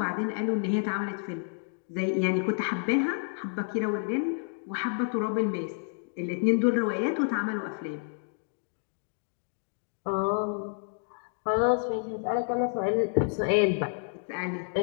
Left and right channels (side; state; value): right; silent; 58 dB below the other